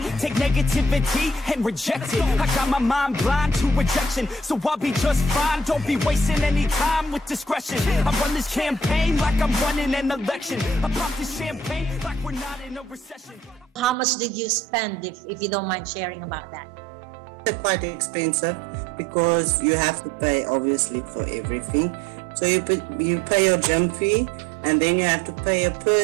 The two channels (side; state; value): left; drops out; at 14.0 s